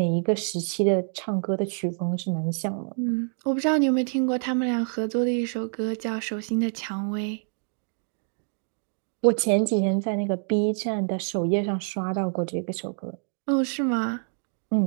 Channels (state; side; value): silent; left; 57 dB below the other